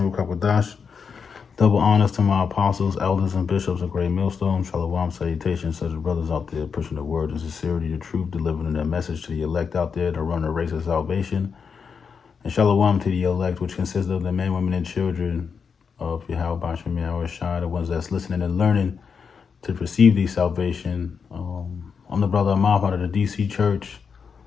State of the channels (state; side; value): quieter; right; 6.0 dB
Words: Kakwadash. Double honors to my apostles, elders, and bishops of Great Millstone. Shalom, salutations to the brothers out there pushing the word and sincerity, the truth, delivering their message to the elect out there to run a race of salvation. And Shalom to the elect, which consists of the men, women, and children of Yahweh, by Hashem Yahushua, the ones that's listening and learning to receive the salvation. I'm the brother Amaf out of the DC Church.